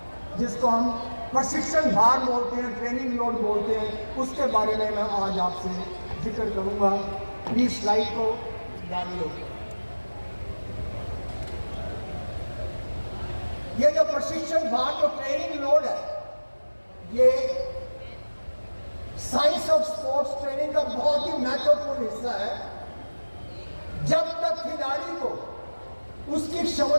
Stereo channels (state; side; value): inverted; both; correlation -1.00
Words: जिसको हम प्रशिक्षण भार बोलते हैं, ट्रेनिंग लोड बोलते हैं, उसके बारे में मैं आज आपसे जिक्र करूंगा। प्लीज स्लाइड को डाल लो। ये जो प्रशिक्षण भार जो ट्रेनिंग लोड है, ये साइंस ऑफ स्पोर्ट्स ट्रेनिंग का बहुत ही महत्वपूर्ण हिस्सा है। जब तक खिलाड़ी को उसकी